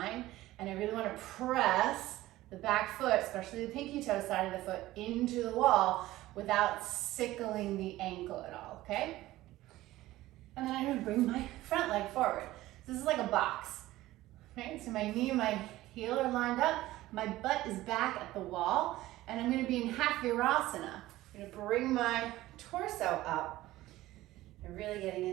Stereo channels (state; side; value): quieter; left; 16.5 dB